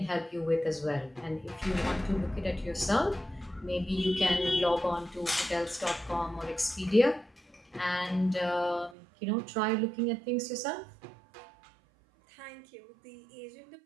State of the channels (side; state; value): left; drops out; at 9.0 s